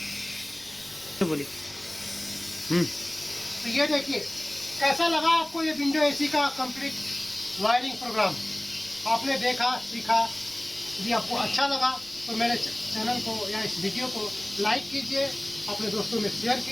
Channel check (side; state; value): right; noise; rumble, 27 dB below the sound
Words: तो बोलिए। तो ये देखिए कैसा लगा आपको ये विंडो एसी का कंप्लीट वायरिंग प्रोग्राम। आपने देखा, सीखा। यदि आपको अच्छा लगा तो मेरे चैनल को या इस वीडियो को लाइक कीजिए, अपने दोस्तों में शेयर